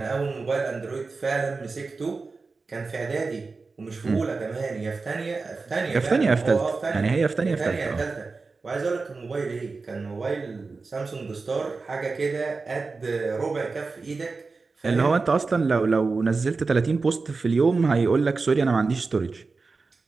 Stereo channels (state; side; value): quieter; left; 4.1 dB